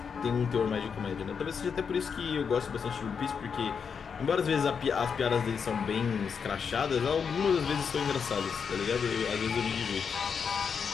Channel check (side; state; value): right; quieter; 6.4 dB